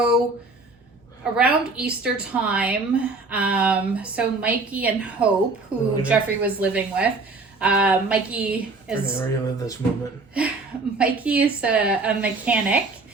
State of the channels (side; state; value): left; quieter; 3.6 dB